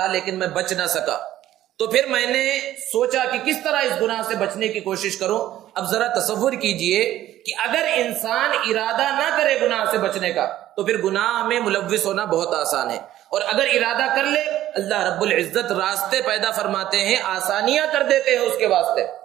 لیکن میں بچ نہ سکا. تو پھر میں نے سوچا کہ کس طرح اس گناہ سے بچنے کی کوشش کروں. اب ذرا تصور کیجئے کہ اگر انسان ارادہ نہ کرے گناہ سے بچنے کا تو پھر گناہ میں ملوث ہونا بہت آسان ہے، اور اگر ارادہ کر لے اللہ رب العزت راستے پیدا فرماتے ہیں، آسانیاں کر دیتے ہیں اس کے واسطے.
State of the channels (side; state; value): left; quieter; 13.4 dB